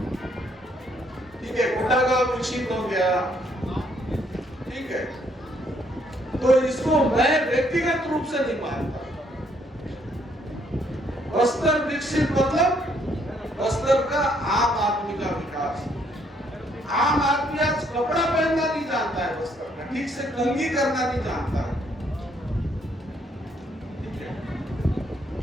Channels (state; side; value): normal; both; correlation 0.69